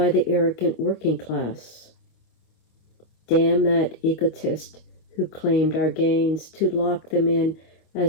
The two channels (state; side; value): late; right; 26 ms